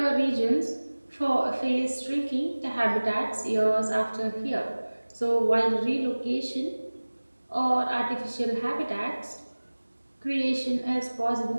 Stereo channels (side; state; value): both; inverted; correlation -1.00